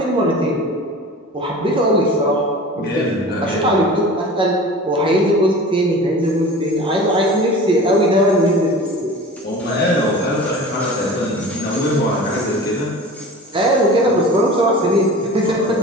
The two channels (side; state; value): both; normal; correlation 0.38